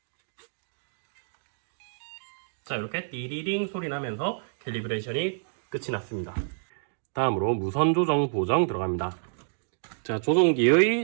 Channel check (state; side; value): silent; left; digital silence